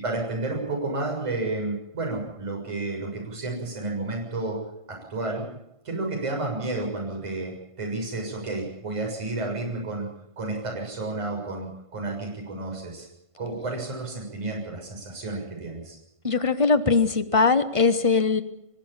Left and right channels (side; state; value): left; late; 1.5 ms